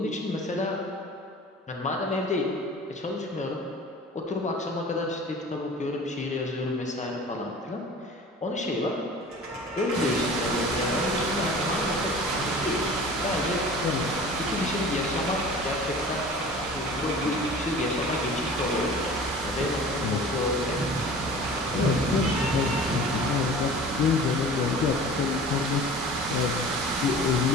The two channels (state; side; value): normal; both; correlation 0.41